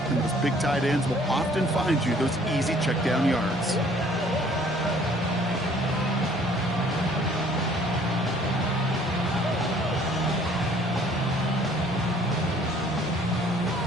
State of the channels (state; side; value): normal; both; correlation 0.57